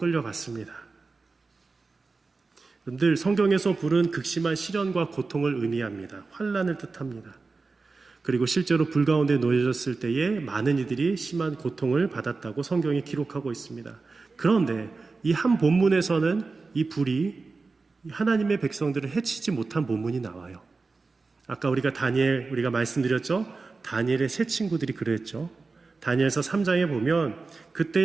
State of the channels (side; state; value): left; quieter; 4.0 dB